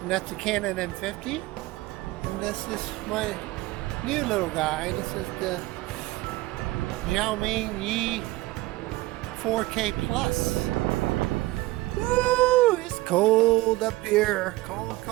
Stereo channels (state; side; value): quieter; left; 19.3 dB